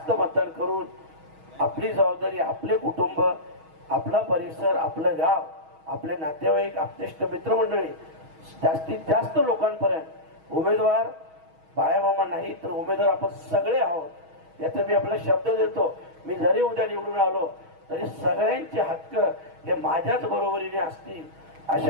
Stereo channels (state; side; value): late; left; 6.3 ms